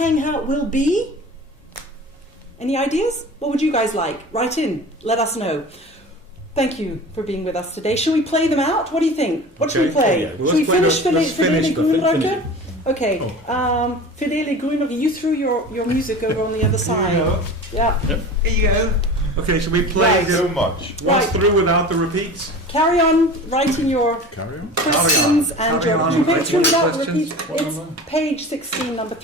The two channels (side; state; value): both; normal; correlation 0.36